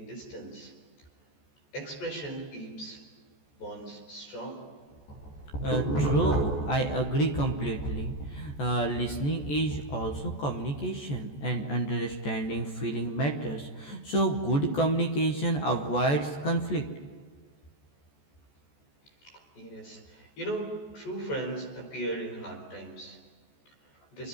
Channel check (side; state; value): right; late; 14 ms